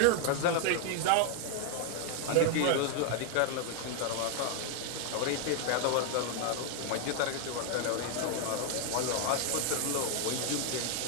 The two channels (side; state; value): both; different; correlation 0.00